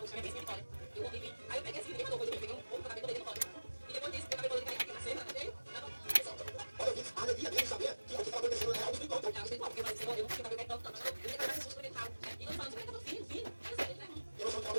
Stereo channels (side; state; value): both; inverted; correlation -1.00